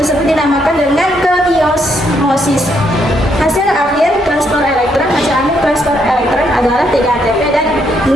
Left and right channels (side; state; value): both; normal; correlation 0.74